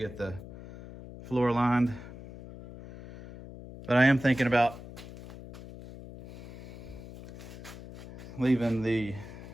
the floor lined. But I am thinking about leaving the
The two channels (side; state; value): left; noise; hum, 15 dB below the sound